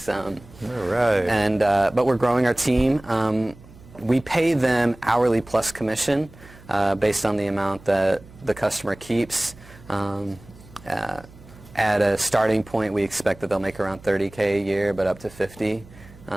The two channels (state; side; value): noise; right; hum, 22 dB below the sound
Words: All right. And but we're growing our team. We pay them hourly plus commission based on the amount that the customer keeps. At a starting point, we expect that they'll make around $30K a year, but up to $50.